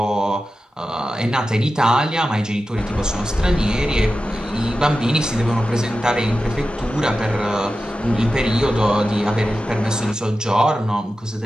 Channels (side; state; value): both; normal; correlation 0.93